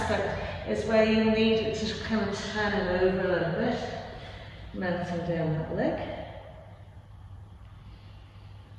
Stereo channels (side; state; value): both; identical; correlation 1.00